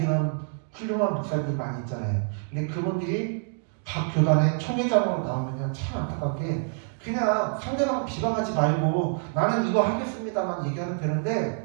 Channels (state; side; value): silent; left; 60 dB below the other